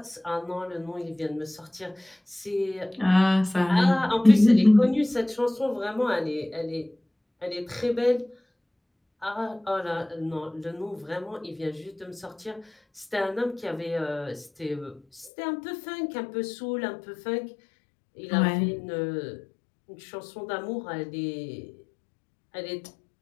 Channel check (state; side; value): drops out; right; at 15.3 s